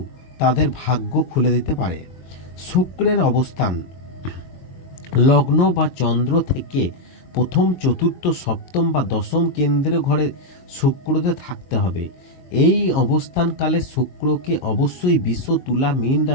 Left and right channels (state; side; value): late; right; 22 ms